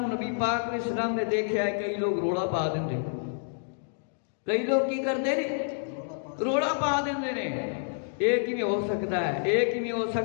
پاک علیہ السلام نے دیکھا ہے. کئی لوگ روڑا پا دیں، کئی لوگ کی کرتے ہیں روڑا پا دیں. ایک ہی میں ہو سکتا ہے، ایک ہی میں ہو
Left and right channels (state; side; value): silent; right; digital silence